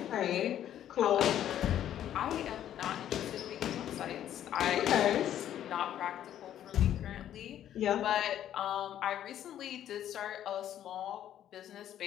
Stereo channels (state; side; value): quieter; right; 11.0 dB